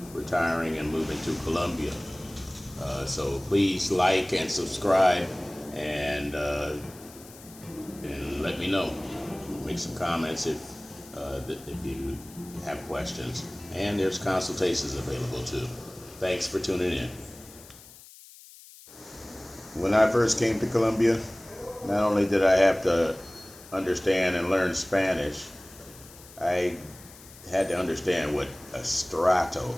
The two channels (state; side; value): noise; left; hiss, 20 dB below the sound